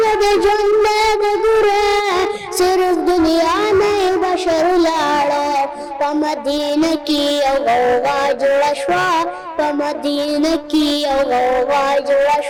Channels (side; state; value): both; identical; correlation 1.00